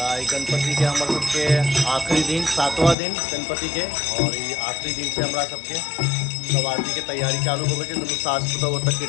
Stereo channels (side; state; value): right; drops out; at 3.0 s